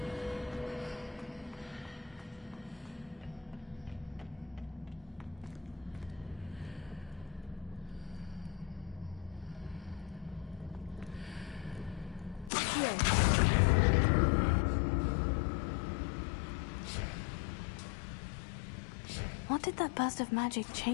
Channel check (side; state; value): right; drops out; at 12.5 s